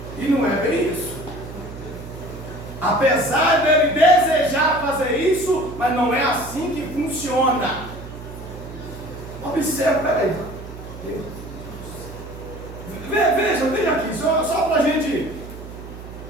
E não é bem isso. Apesar dele desejar fazer isso, mas não é assim que funciona. Observe, peraí. Veja aqui, só para a gente.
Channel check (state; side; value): noise; right; hum, 13 dB below the sound